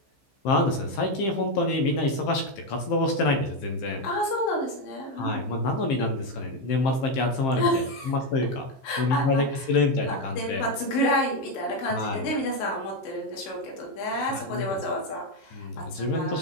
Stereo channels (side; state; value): right; late; 15 ms